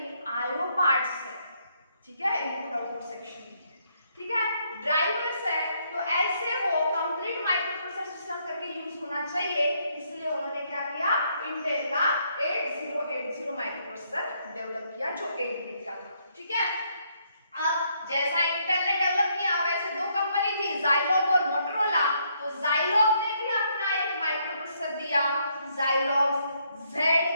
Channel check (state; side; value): inverted; both; correlation -0.72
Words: IO parts है, ठीक है, इनपुट आउटपुट सेक्शन, ठीक है, ड्राइवर्स है। तो ऐसे वो कंप्लीट माइक्रोप्रोसेसर सिस्टम करके यूज होना चाहिए, इसलिए उन्होंने क्या किया, इंटेल का 8080 माइक्रोप्रोसेसर डेवलप किया जो 8 बिट का था। ठीक है, अब जैसा इंटेल ने डेवलप किया वैसे दो कंपनी थी, ज़ाइलोग और मोटोरोला। तो ज़ाइलोग ने भी अपना एक माइक्रोप्रोसेसर दिया, ज़ाइलोग